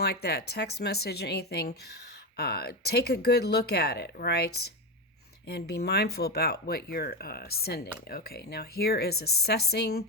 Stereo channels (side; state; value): both; normal; correlation 0.15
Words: that, text message, anything, take a good look at it, right? And be mindful about what you're sending. Okay, now here is assessing.